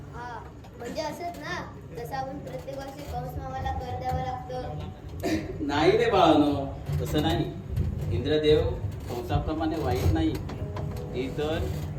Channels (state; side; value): identical; both; correlation 1.00